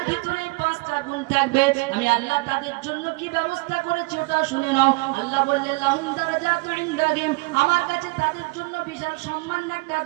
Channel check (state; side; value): quieter; left; 26.3 dB